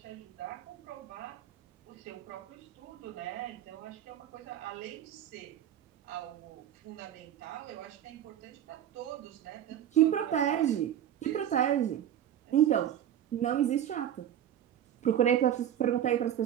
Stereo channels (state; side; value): quieter; left; 10.7 dB